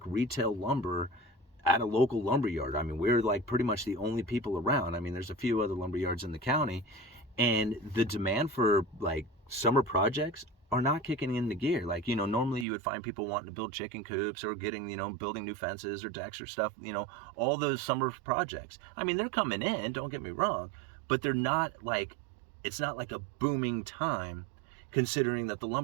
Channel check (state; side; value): drops out; left; at 12.7 s